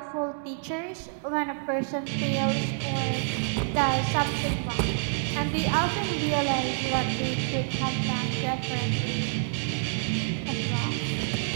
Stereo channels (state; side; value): silent; left; 60 dB below the other